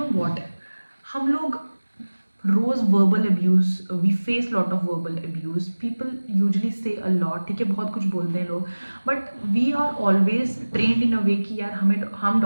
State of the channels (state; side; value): inverted; both; correlation -1.00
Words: what, हम लोग रोज verbal abuse, we face lot of verbal abuse, people usually say a lot, ठीक है, बहुत कुछ बोलते हैं लोग, but we are always trained in a way कि यार हम